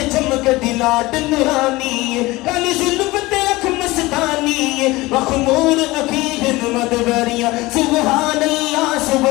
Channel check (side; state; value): right; quieter; 20.5 dB